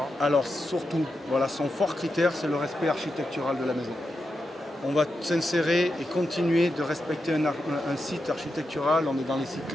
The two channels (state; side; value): normal; both; correlation 0.87